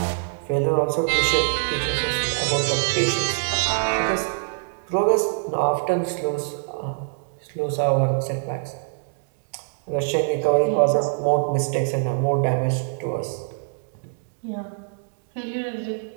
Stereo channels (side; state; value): left; silent; digital silence